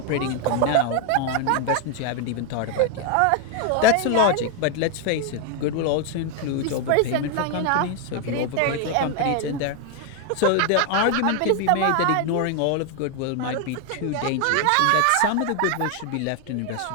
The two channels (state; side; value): different; both; correlation 0.01